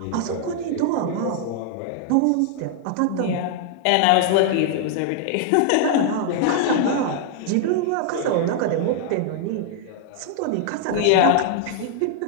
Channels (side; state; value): both; different; correlation 0.00